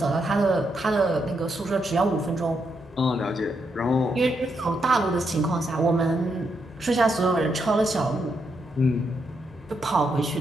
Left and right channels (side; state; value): both; normal; correlation 0.80